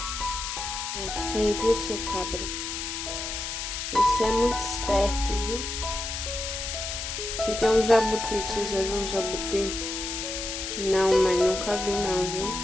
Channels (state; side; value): noise; left; hiss, 5 dB below the sound